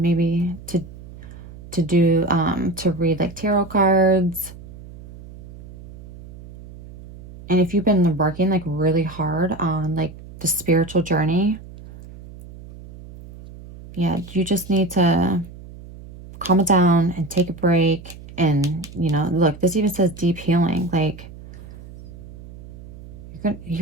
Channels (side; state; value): right; noise; hum, 17 dB below the sound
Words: maybe to do, to read like tarot cards. And if you've been working like really hard on like the spiritual journey, yeah, you just need to calm it down and take a break. And, you know, look, this even says deep healing. Like,